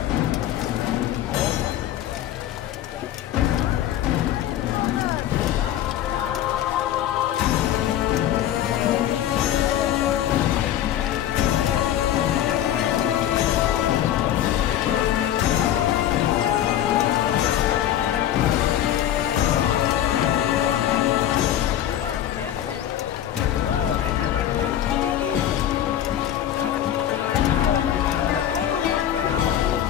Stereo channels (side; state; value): right; quieter; 11.5 dB